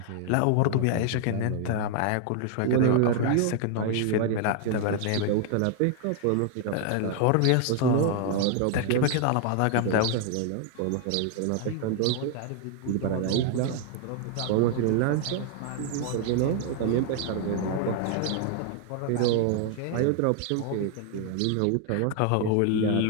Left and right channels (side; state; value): both; different; correlation 0.00